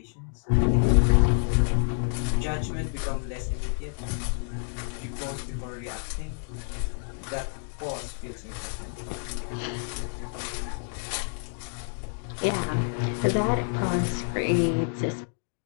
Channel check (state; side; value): silent; right; 57 dB below the other